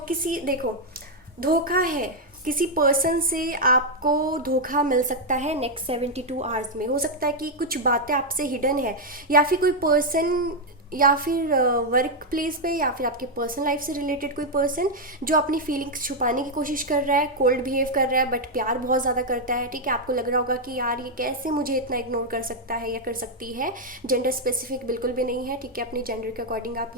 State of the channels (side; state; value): both; normal; correlation 0.00